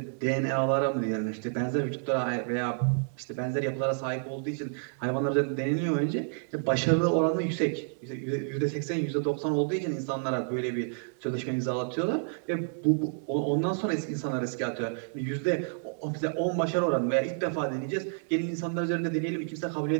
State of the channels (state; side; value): silent; left; digital silence